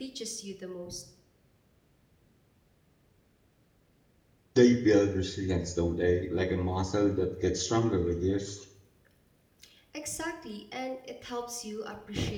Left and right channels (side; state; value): both; identical; correlation 1.00